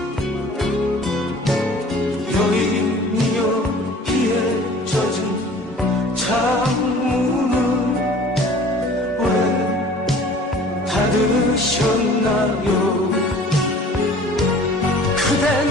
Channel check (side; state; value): both; normal; correlation 0.48